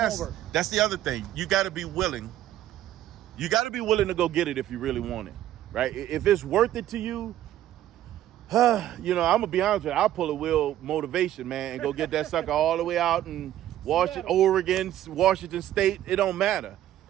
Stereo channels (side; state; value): left; quieter; 12.8 dB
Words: homework. that's the other thing. You got to be willing. You got to be willing to go get it if you really want it, right? If it's worth it to you, I'm gonna be honest with you. I'll pull a wheel motivation, man, and go get that sucker all the way out in Oregon, Washington State. It don't matter.